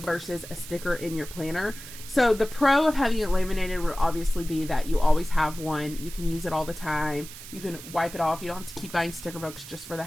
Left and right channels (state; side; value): noise; right; hiss, 14 dB below the sound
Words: a sticker in your planner. So the pro of having it laminated would obviously be that you always have one. You can use it all the time. You can wipe it off. You don't have to keep buying sticker books just for the